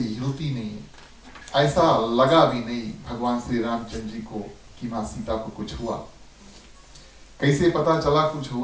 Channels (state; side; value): identical; both; correlation 1.00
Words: नहीं है। ऐसा लगा भी नहीं भगवान श्री रामचंद्र जी को कि माँ सीता को कुछ हुआ। कैसे पता चला कुछ